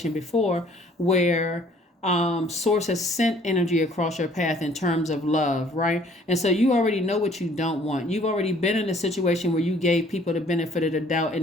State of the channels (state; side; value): normal; both; correlation 0.58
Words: before where Source has sent energy across your path in terms of love, right? And so you already know what you don't want. You've already been in a situation where you gave people the benefit of the doubt